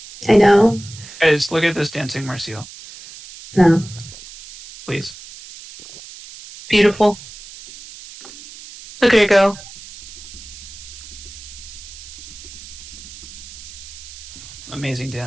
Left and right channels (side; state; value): right; noise; hiss, 16 dB below the sound